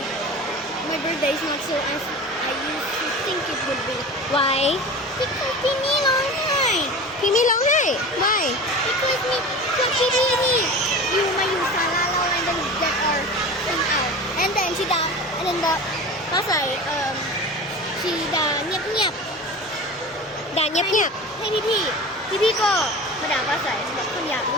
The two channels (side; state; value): both; normal; correlation 0.34